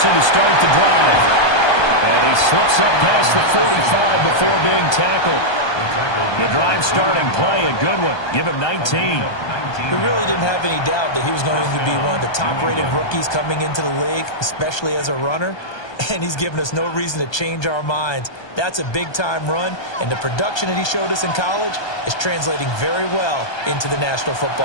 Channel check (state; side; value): late; right; 1.2 ms